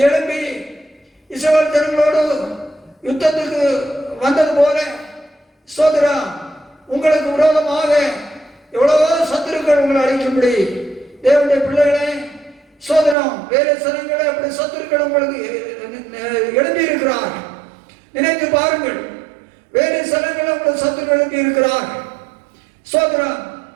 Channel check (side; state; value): left; drops out; at 13.2 s